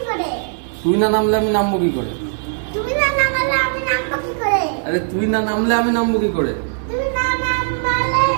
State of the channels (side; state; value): left; silent; digital silence